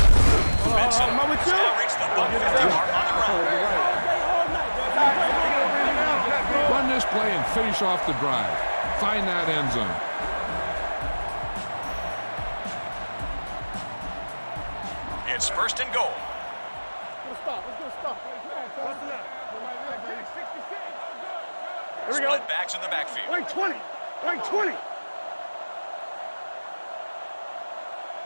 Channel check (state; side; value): inverted; both; correlation -1.00